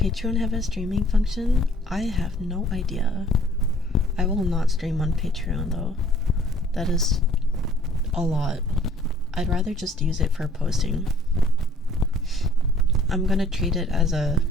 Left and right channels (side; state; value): both; normal; correlation 0.56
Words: have a streaming function? I have no idea. I will not stream on Patreon though. That is a lot. I'd rather just use it for posting. I'm gonna treat it as a